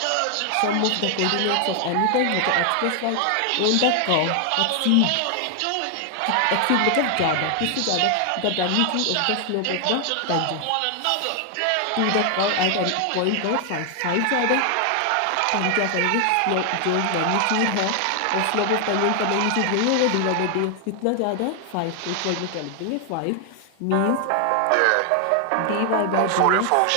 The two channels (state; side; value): different; both; correlation 0.00